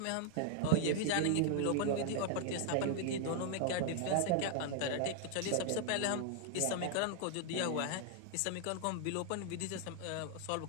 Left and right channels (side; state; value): both; different; correlation 0.00